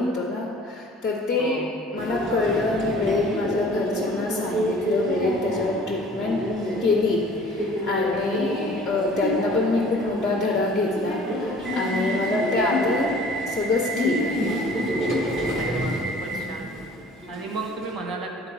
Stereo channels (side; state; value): both; normal; correlation 0.49